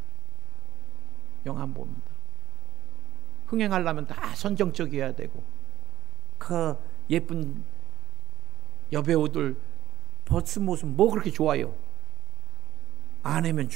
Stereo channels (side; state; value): left; quieter; 13.1 dB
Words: 영화 안 봅니다. 흥행하려면 다 선정적이어야 되고, 그 예쁜 여배우들 벗은 모습 뭐 그렇게 좋아요? 아내면